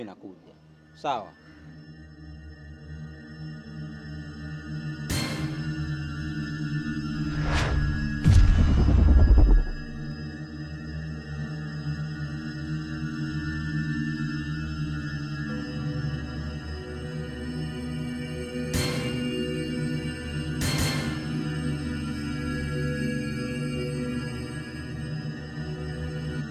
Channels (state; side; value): identical; both; correlation 1.00